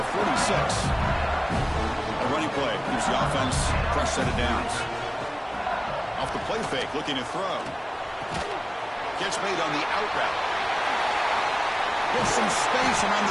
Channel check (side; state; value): both; identical; correlation 1.00